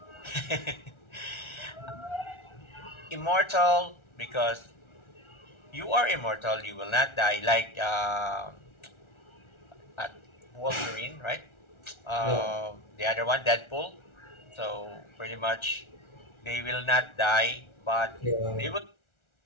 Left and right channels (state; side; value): late; right; 1.4 ms